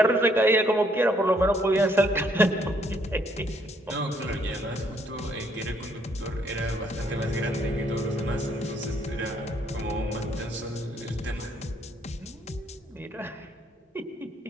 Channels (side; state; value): both; normal; correlation 0.68